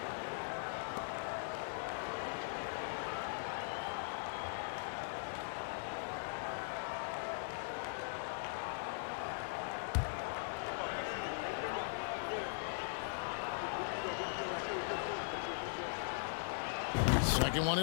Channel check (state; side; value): silent; right; digital silence